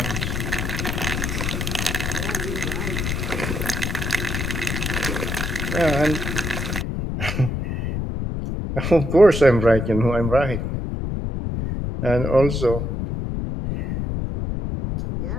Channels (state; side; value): noise; left; rumble, 2 dB below the sound